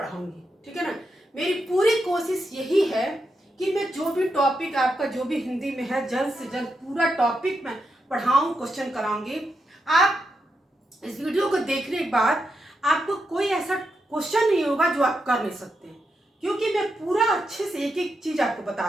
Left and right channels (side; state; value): both; normal; correlation 0.85